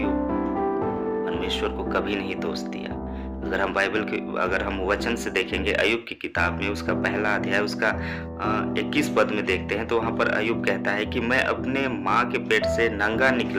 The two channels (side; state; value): both; identical; correlation 1.00